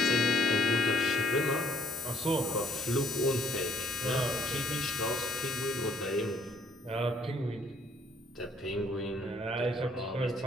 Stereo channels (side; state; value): both; normal; correlation 0.65